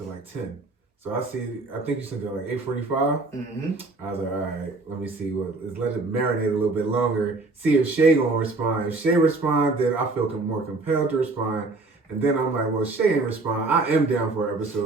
like 10. So I think you sent it like 8:45. Mm-hmm. I was like, all right, let me see let it marinate a little bit longer. See if Shay gonna respond. If Shay respond, then I feel more compelled to respond. And then I'm like, well, Shay ain't respond. I am down for an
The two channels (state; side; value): quieter; left; 3.4 dB